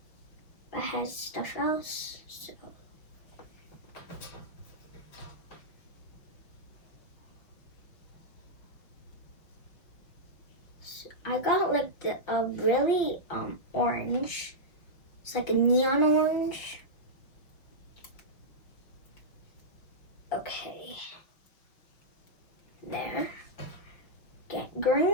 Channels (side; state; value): right; late; 5.8 ms